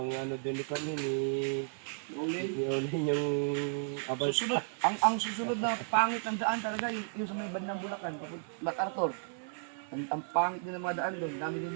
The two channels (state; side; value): silent; left; 55 dB below the other